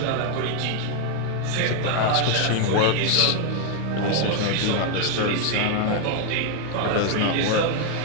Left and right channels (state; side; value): different; both; correlation 0.01